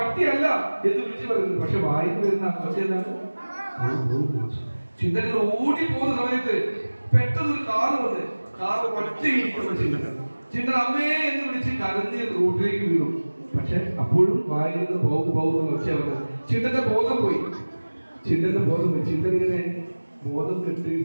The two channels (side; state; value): both; inverted; correlation -1.00